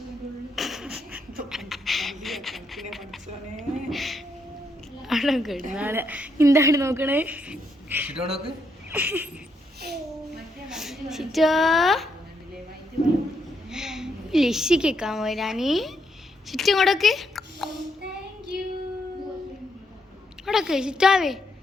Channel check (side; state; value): both; normal; correlation 0.77